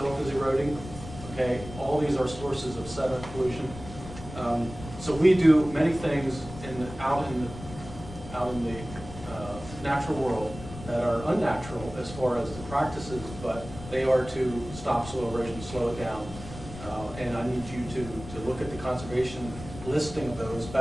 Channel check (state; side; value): noise; left; rumble, 13 dB below the sound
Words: is eroding. Okay, all these are sources of sediment pollution. So we do many things out in the natural world that are unnatural as far as the practices, but they are to stop soil erosion, slow it down. And I need you to look at the conservation listing of those